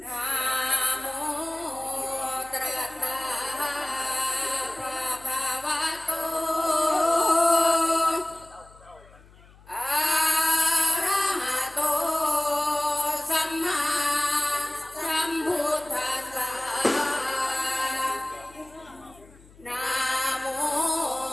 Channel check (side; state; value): left; noise; hum, 25 dB below the sound